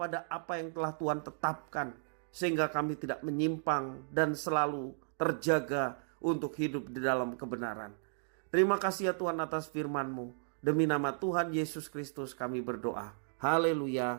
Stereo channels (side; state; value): left; silent; digital silence